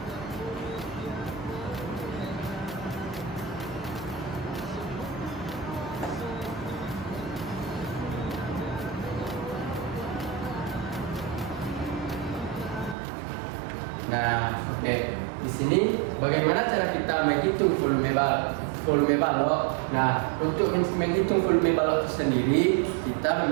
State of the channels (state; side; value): drops out; left; at 13.0 s